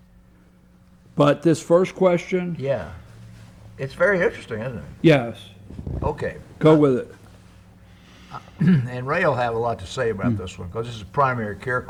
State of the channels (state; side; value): identical; both; correlation 1.00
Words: but this first question. Yeah. It's very interesting, isn't it? Yes. Okay. Go with it. And Ray will have a lot to say about this one because this is a primary care